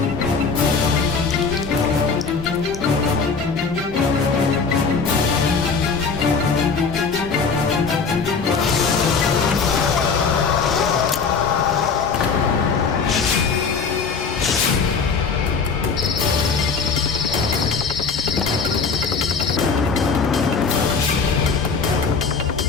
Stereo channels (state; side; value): quieter; right; 5.1 dB